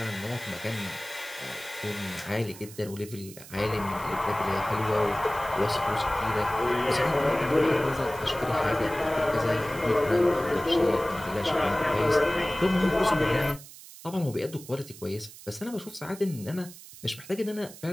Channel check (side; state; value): right; noise; hiss, 17 dB below the sound